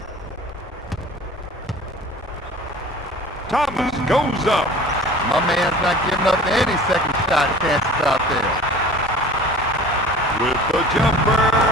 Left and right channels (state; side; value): normal; both; correlation 0.43